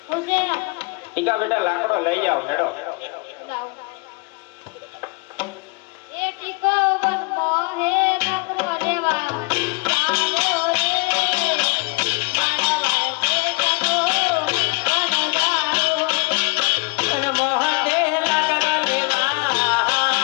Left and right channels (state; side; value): quieter; right; 29.5 dB